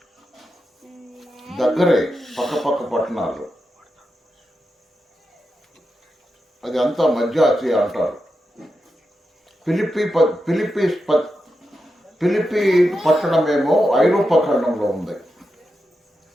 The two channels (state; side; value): normal; both; correlation 0.88